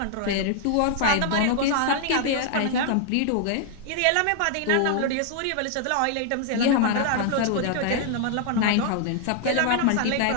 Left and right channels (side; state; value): both; different; correlation 0.00